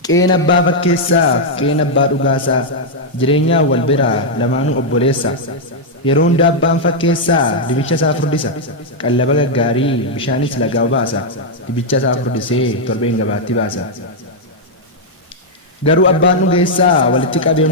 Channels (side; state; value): both; normal; correlation -0.03